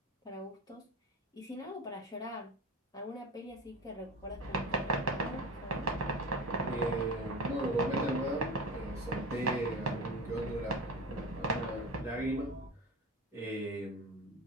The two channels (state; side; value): normal; both; correlation 0.30